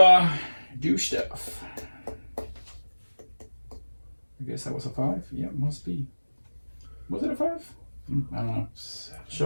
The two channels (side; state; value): both; inverted; correlation -1.00